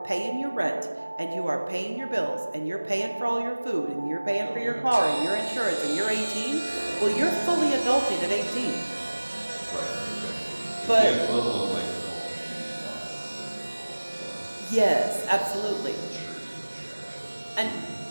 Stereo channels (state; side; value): inverted; both; correlation -1.00